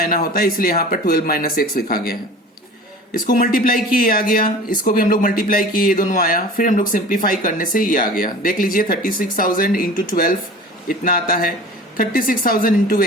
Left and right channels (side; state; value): both; normal; correlation 0.39